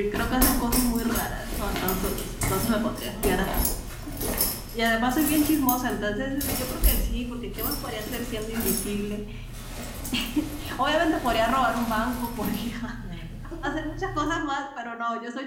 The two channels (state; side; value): identical; both; correlation 1.00